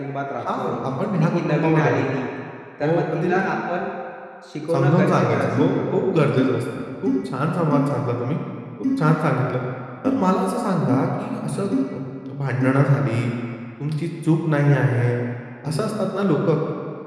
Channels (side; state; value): both; identical; correlation 1.00